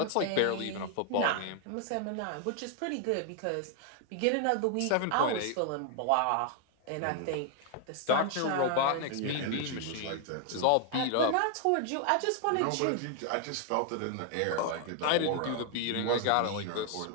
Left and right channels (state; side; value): different; both; correlation 0.00